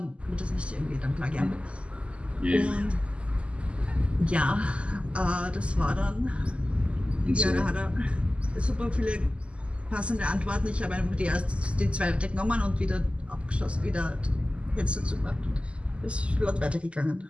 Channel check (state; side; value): late; left; 0.057 ms